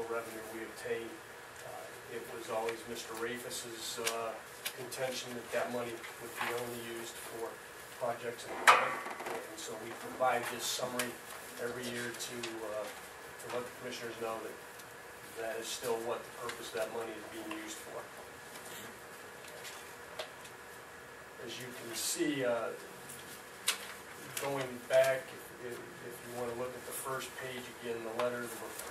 revenue we obtained. It was always Mr. Rafus's contention that that money would be only used for projects and equipment. And so we provide this summary every year to let the commissioners know that that is still what the purpose of that money is being used for. As you can see, going back, if you want to look at the first page again, the letter, the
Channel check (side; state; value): both; identical; correlation 1.00